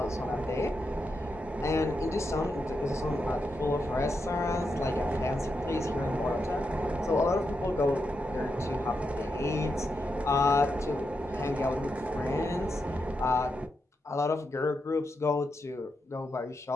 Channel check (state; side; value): normal; both; correlation 0.85